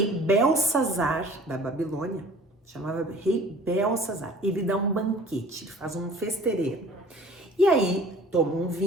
Belsazar da Babilônia, chamava rei Belsazar, ele dá um banquete, ele faz um festeirê. E aí toma um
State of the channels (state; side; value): normal; both; correlation 0.48